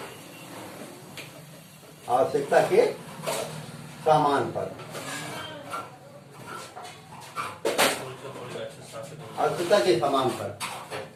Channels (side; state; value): both; identical; correlation 1.00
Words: आवश्यकता के सामान पर, आवश्यकता के सामान पर